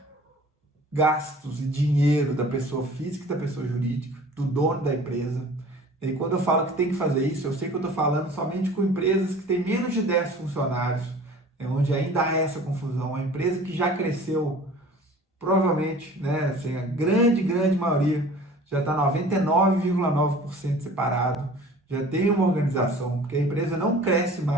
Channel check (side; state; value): both; normal; correlation 0.46